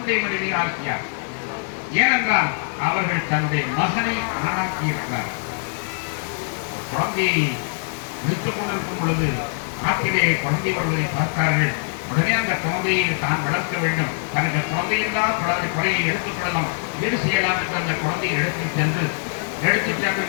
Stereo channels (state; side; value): silent; right; digital silence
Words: மனைவி ஆசியா. ஏனென்றால் அவர்கள் தன்னுடைய மகனை ஆணாக்கி இருக்கிறார். குழந்தையை விடுத்துக் கொண்டிருக்கும் பொழுது ஆற்றிலே குழந்தை வருவதை பார்த்தார்கள். உடனே அந்த குழந்தையை தான் வளர்க்க வேண்டும், தனக்கு குழந்தையில்லாத குறையை எடுத்துக் கொள்ளலாம், வீடு செய்யலாம் என்று அந்த குழந்தையை எடுத்துச் சென்று